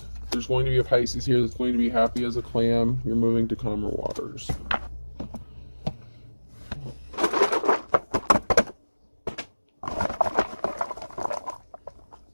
There's going to be a Pisces here that's going to be happy as a clam. You're moving to calmer waters.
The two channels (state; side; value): inverted; both; correlation -1.00